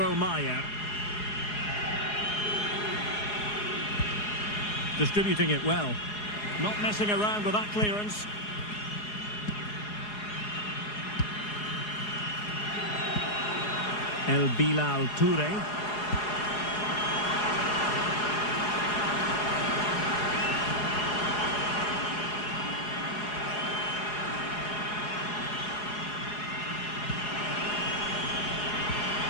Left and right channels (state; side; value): late; right; 4.8 ms